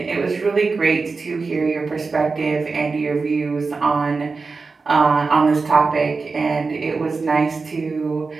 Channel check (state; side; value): quieter; left; 4.3 dB